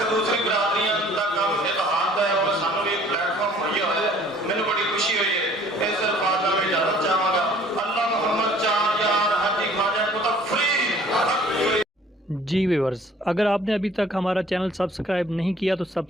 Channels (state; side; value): normal; both; correlation 0.54